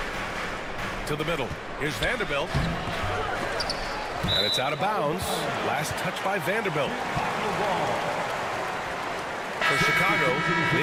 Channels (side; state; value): both; identical; correlation 1.00